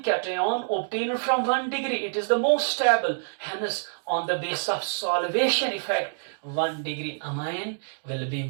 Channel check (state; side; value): silent; left; digital silence